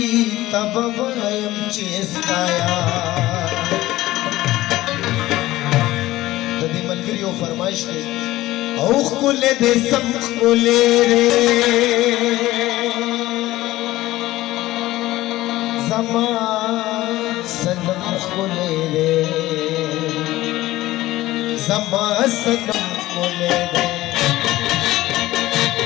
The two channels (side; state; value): right; quieter; 16.7 dB